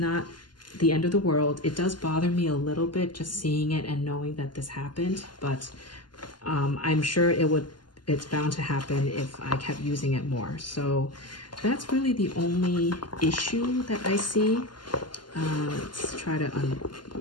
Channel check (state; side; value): late; right; 0.71 ms